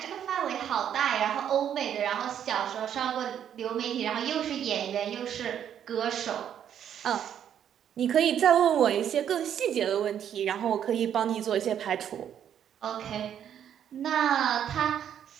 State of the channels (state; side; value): quieter; left; 9.4 dB